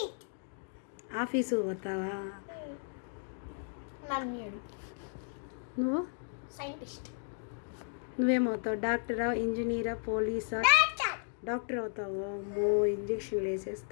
Office పోతావా? నువ్వు సైంటిస్ట్. నువ్వేమవుతావు? డాక్టరా, ఇంజనీరా, పోలీసా? డాక్టర్ అవుతావు. అమ్మో, ఇంజక్షన్లు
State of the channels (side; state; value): right; silent; digital silence